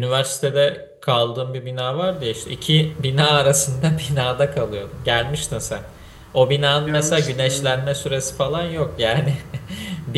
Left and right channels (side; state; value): both; identical; correlation 1.00